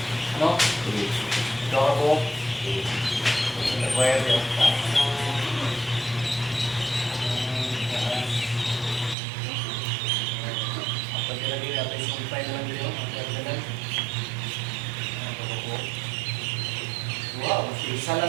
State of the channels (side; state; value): left; drops out; at 9.2 s